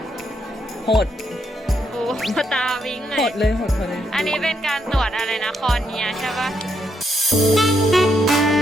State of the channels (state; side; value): normal; both; correlation 0.77